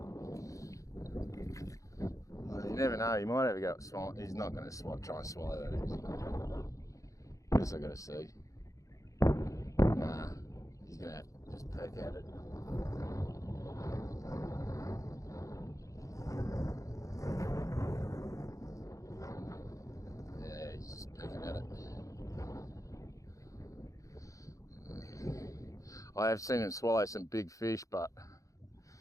Well, you never know, he might have a go at swallow. He's not going to try and swallow that, is he? Guess I've got to see. Nah, he's going to just peck at it. Yeah, he's just pecking at it. I have seen him swallow some big fish, but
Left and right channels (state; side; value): late; right; 0.16 ms